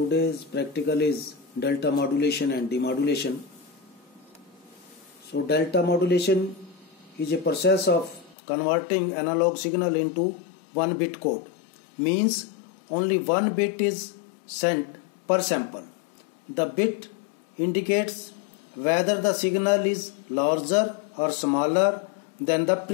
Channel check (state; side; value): drops out; right; at 8.3 s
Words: practical is delta modulation and demodulation. So delta modulation is a process of converting analog signal into 1-bit code. Means only 1 bit is sent per sample. The bit indicates whether the signal is larger or smaller than the